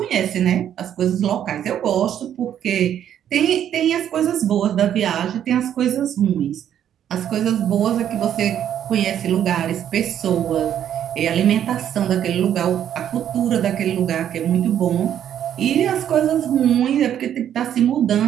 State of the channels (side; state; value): left; quieter; 10.1 dB